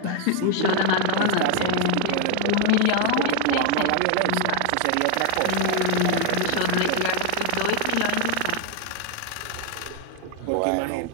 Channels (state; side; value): different; both; correlation 0.00